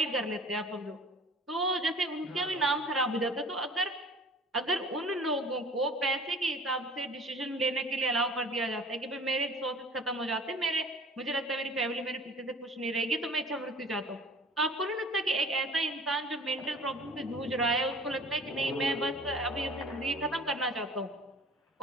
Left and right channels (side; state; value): both; normal; correlation 0.46